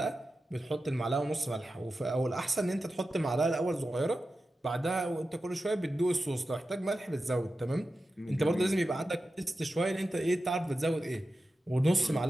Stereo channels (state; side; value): normal; both; correlation 0.92